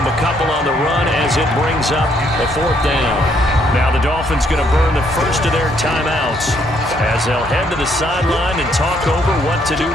a couple on the run as it brings up a 4th down. Now the Dolphins going to burn the first of their timeouts as they'll head to the sideline and talk over what to do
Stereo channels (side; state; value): both; normal; correlation 0.70